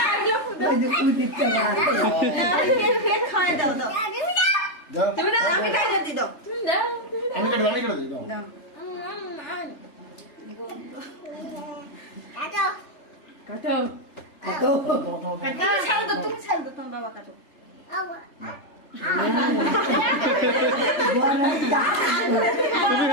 আমি খাই দিই দাও। আমি করে দিই দাও। কাটো ছাড়ো তো, তুমি ছাড়ো তো, তোমার বাবা কাটো।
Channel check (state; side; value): late; right; 3.4 ms